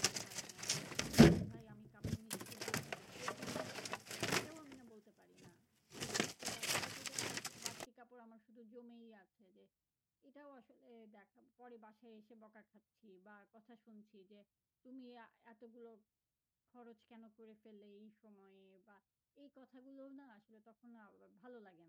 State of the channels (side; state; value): both; identical; correlation 1.00